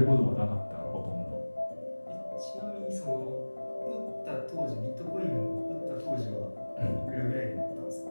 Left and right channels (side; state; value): both; inverted; correlation -1.00